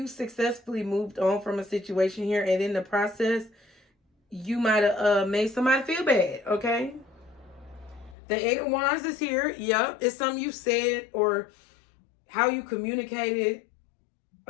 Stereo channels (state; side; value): drops out; right; at 8.2 s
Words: successfully moved on from a situation here, and in the process, you might have made somebody feel bad, okay? The Eight of Wands is here. Yep, it's something you said or how you communicated,